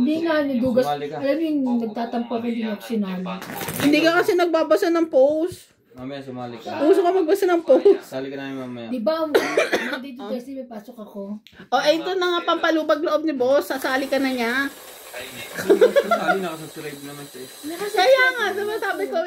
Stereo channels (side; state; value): both; identical; correlation 1.00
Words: nga, nadugas. Sumali ka. Alam mo yung nagtatampo ko din ako sinali. Hindi ka kasi nagbabasa ng post. Mamaya sumali ka. Uso ka magbasa ng post. Sali ka namin mamaya. Di ba, dito kasi may pasok ako. O, ito na nga pampalubag loob ni boss. Sasali ka na niya. Sali na ako, subscribe naman siya. Kaya nga, diba sabi ko,